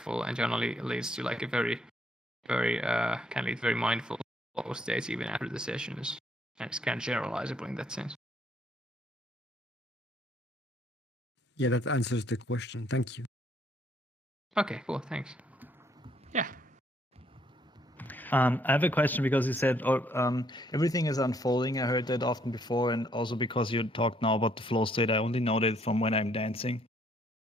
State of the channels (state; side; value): normal; both; correlation 0.68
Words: and jhana leads to a very, very can lead very mindful flow states even after the sessions, and it's kind of generalizable in that sense. Yeah, that answers the question. Thank you. Okay, cool. Thanks. Yeah. I have a question because you said everything is unfolding. I heard that often before, and also because you talked now about the flow state. I only know that from when I'm dancing.